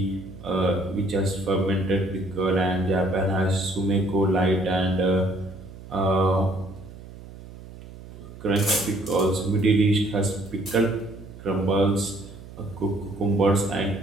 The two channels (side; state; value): right; noise; hum, 16 dB below the sound